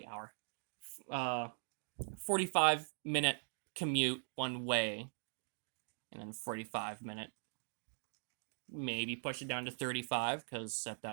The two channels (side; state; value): left; silent; digital silence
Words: 45-minute commute one way, and then 45-minute, maybe push it down to 35, because at